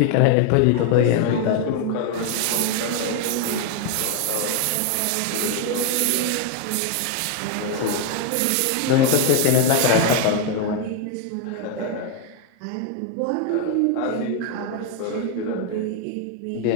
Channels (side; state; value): both; different; correlation 0.01